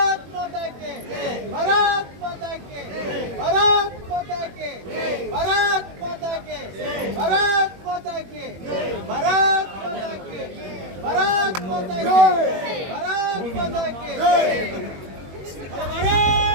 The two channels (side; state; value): left; late; 21 ms